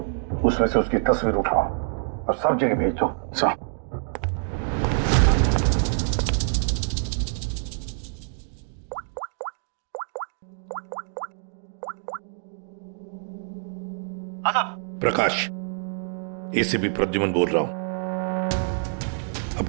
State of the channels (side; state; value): left; silent; digital silence